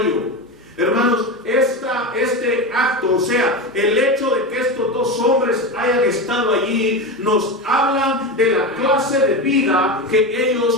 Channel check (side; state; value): both; normal; correlation 0.20